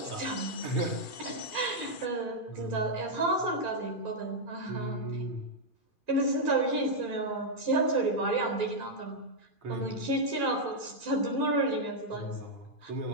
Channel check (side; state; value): right; late; 2.4 ms